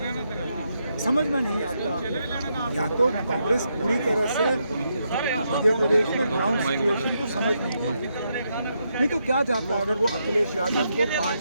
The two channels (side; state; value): both; inverted; correlation -0.80